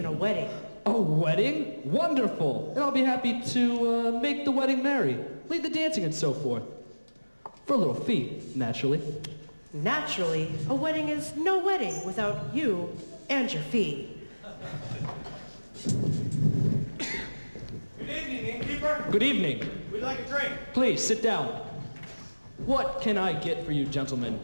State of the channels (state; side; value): inverted; both; correlation -1.00